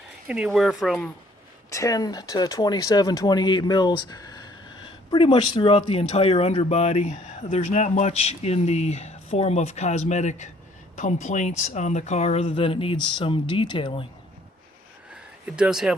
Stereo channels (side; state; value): both; normal; correlation 0.61